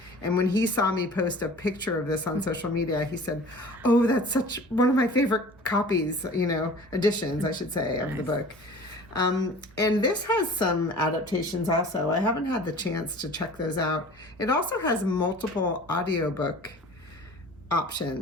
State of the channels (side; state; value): both; normal; correlation 0.43